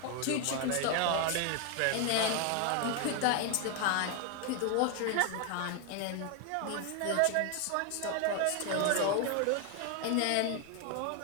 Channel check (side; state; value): both; different; correlation 0.00